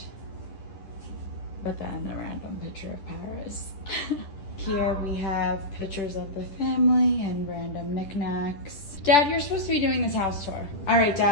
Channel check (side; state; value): right; late; 10 ms